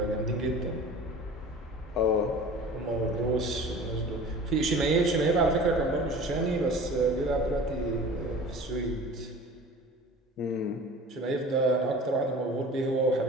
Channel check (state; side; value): normal; both; correlation 0.41